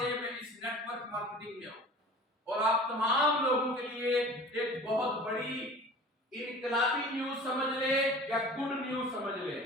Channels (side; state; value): both; normal; correlation 0.42